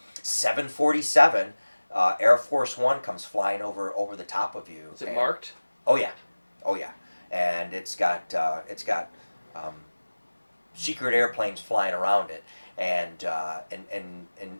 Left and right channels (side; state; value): both; inverted; correlation -1.00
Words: 747. Air Force One comes flying over the top of you. Is it marked? Oh yeah, and it's got secret airplanes flying around it, and